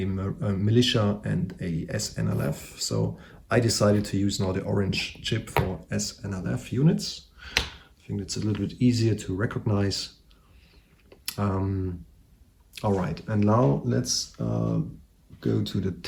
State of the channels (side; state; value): both; identical; correlation 1.00